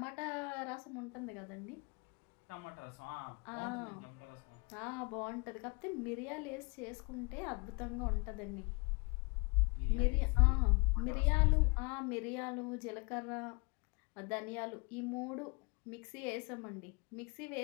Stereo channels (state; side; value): quieter; right; 30.9 dB